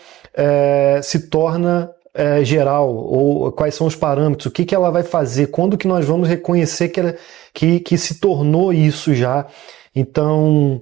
se torna geral, ou quais são os parâmetros, o que ela vai fazer, quando que nós vamos reconhecer que se tornou isso já. Então,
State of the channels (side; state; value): left; quieter; 15.3 dB